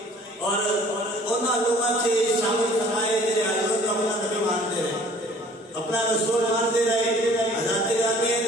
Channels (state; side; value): normal; both; correlation 0.52